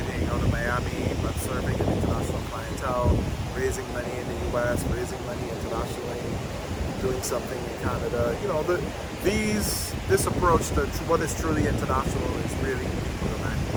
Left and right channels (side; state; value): both; identical; correlation 1.00